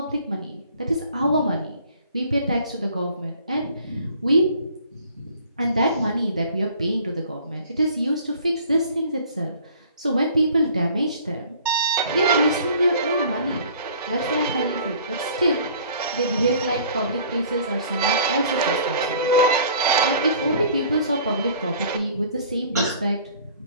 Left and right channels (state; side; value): inverted; both; correlation -0.51